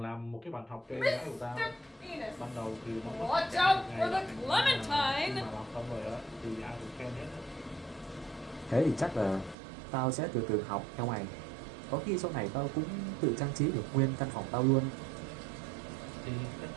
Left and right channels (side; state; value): left; drops out; at 9.6 s